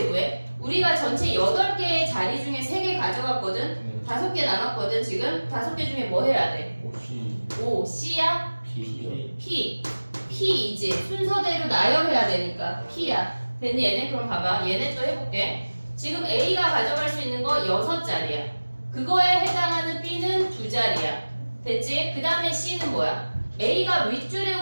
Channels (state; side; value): inverted; both; correlation -1.00